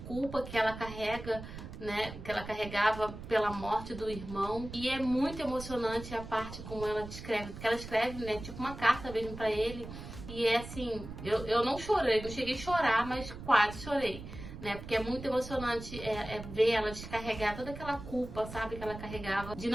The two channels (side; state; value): right; noise; rumble, 11 dB below the sound